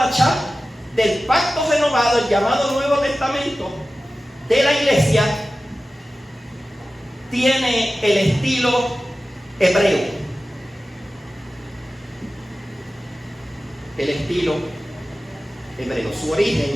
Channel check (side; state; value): both; normal; correlation 0.95